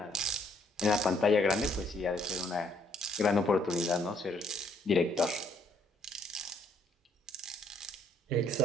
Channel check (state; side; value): normal; both; correlation 0.66